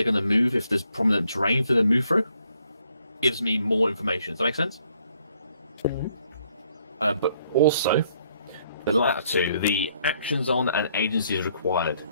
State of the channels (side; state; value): both; inverted; correlation -0.69